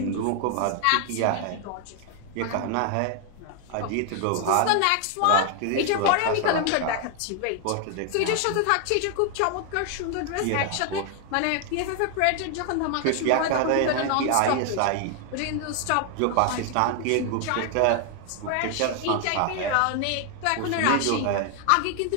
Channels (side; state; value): both; different; correlation 0.00